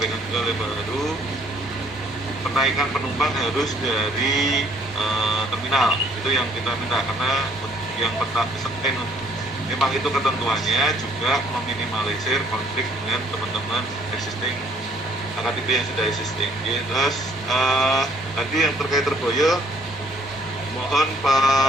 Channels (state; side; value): normal; both; correlation 0.61